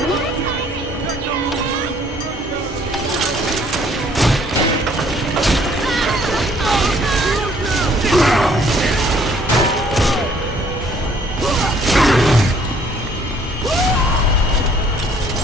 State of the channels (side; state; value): both; normal; correlation 0.60